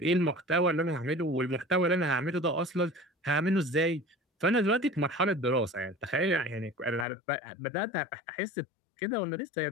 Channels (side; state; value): right; drops out; at 7.1 s